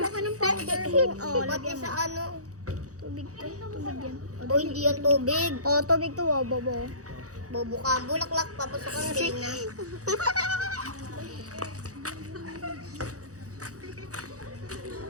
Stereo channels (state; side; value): late; left; 0.66 ms